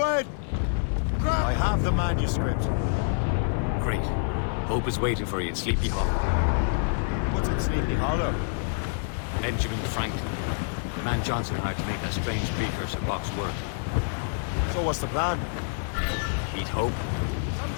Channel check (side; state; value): right; silent; digital silence